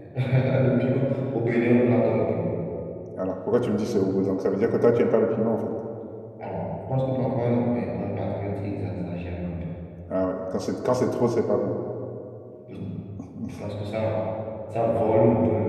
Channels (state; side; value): identical; both; correlation 1.00